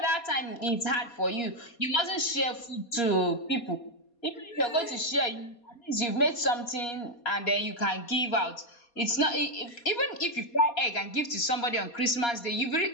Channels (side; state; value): right; late; 4.2 ms